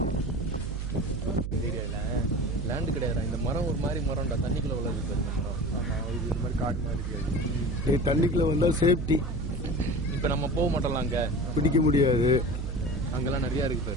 லேண்டு கிடையாது இந்த மரம் ஒரு மாதிரி மரம்டா தண்ணிக்குள்ள வளருது இந்த மரம். ஆமா இது மாதிரி காட்டு மாதிரி இருக்காது தண்ணிக்குள்ள வந்தா சேஃப்டி இப்ப நம்ம போக மாட்டோம்ல அங்க பிடிக்க முடியாது அங்கெல்லாம் நிறைய இருக்கு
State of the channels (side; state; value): right; noise; hum, 4 dB below the sound